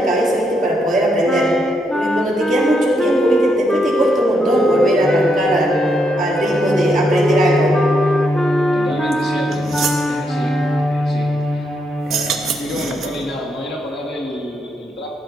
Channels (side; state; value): both; normal; correlation 0.78